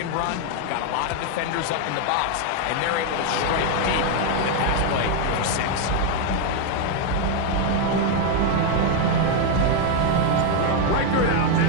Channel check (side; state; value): both; different; correlation 0.01